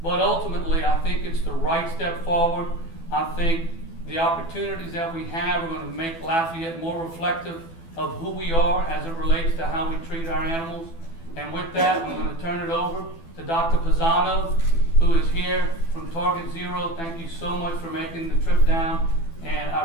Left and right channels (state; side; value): late; right; 12 ms